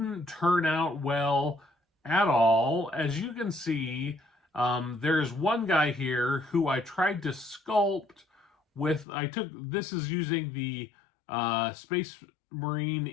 turn out well at all. As you can see, there's one guy here who I tried to sculpt with. This is using the Space Marine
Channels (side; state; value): right; drops out; at 9.1 s